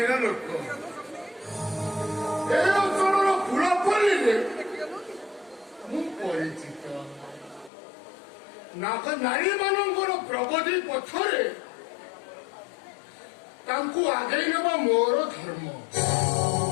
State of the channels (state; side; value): drops out; right; at 7.7 s